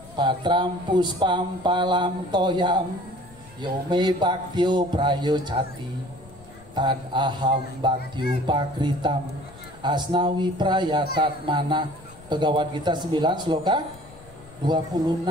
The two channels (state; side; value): noise; left; rumble, 22 dB below the sound